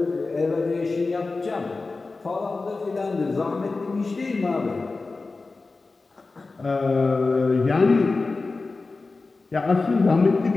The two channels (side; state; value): right; quieter; 3.8 dB